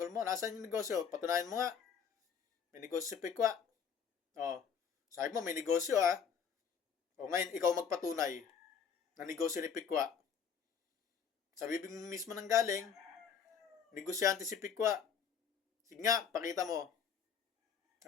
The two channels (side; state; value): right; quieter; 7.0 dB